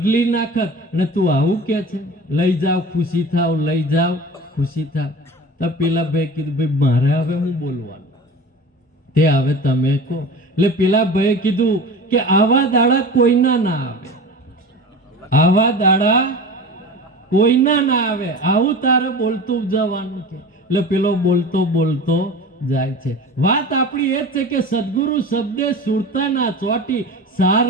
નાખત. અને તું આવું કે છે લઈ જાઓ ખુશી થાવ, લઈ જાઓ ખુશી થાવ. તો પેલા ભાઈ કીધું ભાઈ મારે હવે હું બોલવાનું? તે હવે તમે કહો. એટલે પેલા ભાઈએ કીધું કે આવા દાડા કોઈના ના આવે, આવા દાડા કોઈના ના આવે, આવું તારે બોલતું જવાનું છે. એટલે પેલો બોલતો બોલતો જાય છે. વાત આપણી એ જ છે કે સદગુરુ શબ્દે સુરતા ના ચોટી, સાર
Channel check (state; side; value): normal; both; correlation 0.35